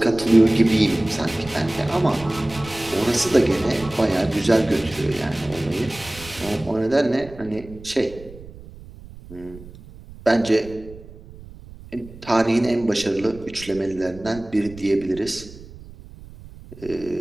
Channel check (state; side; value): noise; right; rumble, 18 dB below the sound